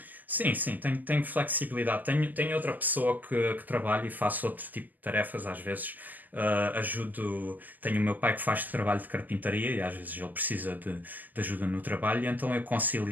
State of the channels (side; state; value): left; late; 0.086 ms